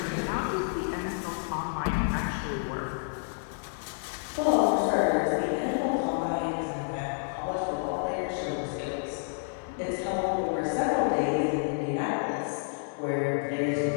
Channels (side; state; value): right; silent; digital silence